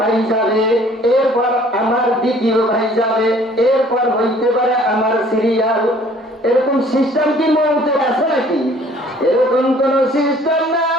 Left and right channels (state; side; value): normal; both; correlation 0.55